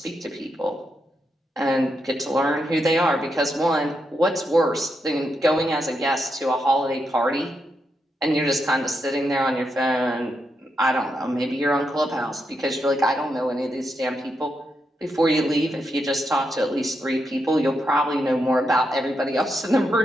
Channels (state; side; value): normal; both; correlation 0.83